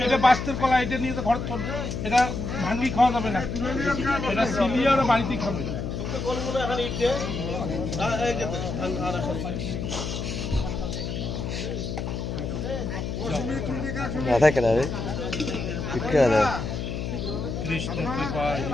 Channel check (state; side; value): noise; left; hum, 4 dB below the sound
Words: এটা বাস্তের কলা, এটা নিয়ে তো ঘর চল, এটা ভাঙ্গি খাওয়া যাবে না, এটা সিলিয়ে ওরা বাড়িতেই খাবে। রাধা কেন রে রাধা কৃষ্ণ কৃপা